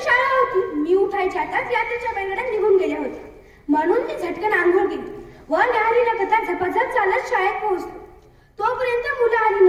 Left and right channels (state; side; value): identical; both; correlation 1.00